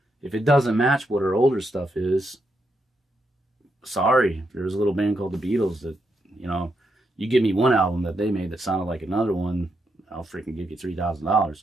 If it doesn't match what our older stuff is, sorry. There's a little band called the Beatles that, you give me one album that they made that sounded like another one, I'll freaking give you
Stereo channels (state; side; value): normal; both; correlation 0.81